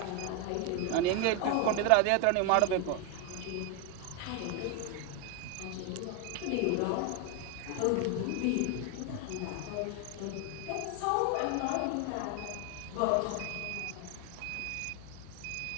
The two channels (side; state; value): both; different; correlation 0.01